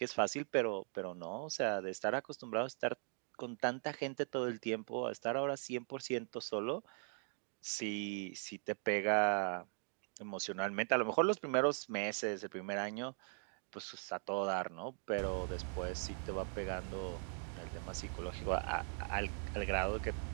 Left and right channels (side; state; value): left; silent; 51 dB below the other